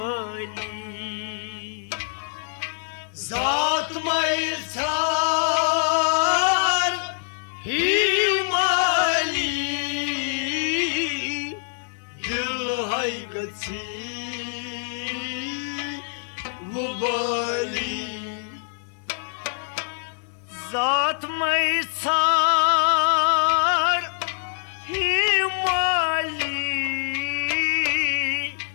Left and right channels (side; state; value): right; silent; digital silence